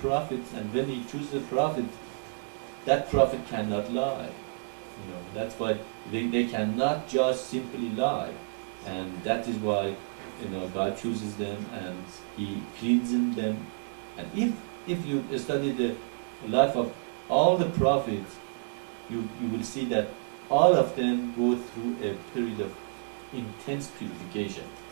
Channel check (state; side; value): quieter; left; 38.8 dB